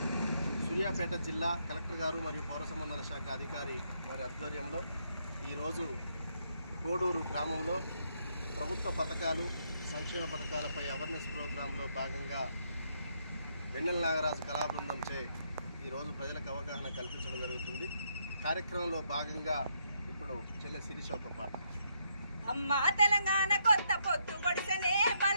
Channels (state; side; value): inverted; both; correlation -0.75